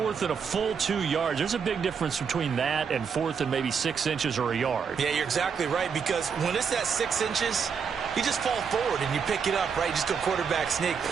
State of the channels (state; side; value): quieter; left; 6.4 dB